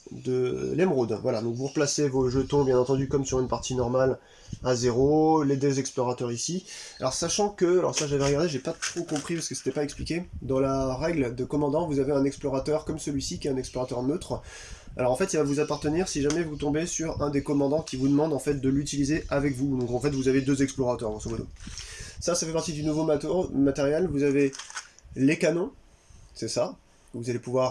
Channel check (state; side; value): identical; both; correlation 1.00